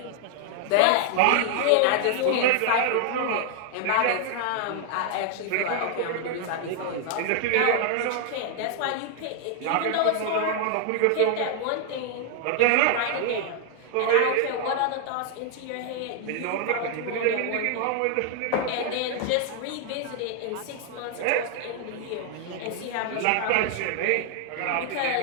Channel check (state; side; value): different; both; correlation 0.00